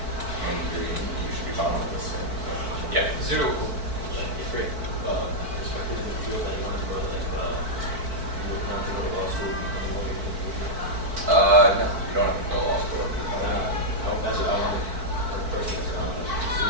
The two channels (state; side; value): late; left; 4.5 ms